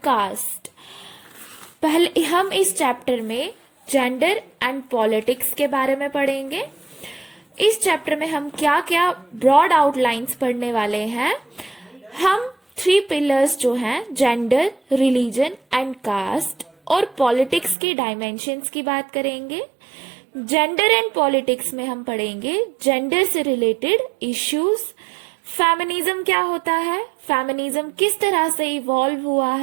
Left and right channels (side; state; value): left; drops out; at 17.8 s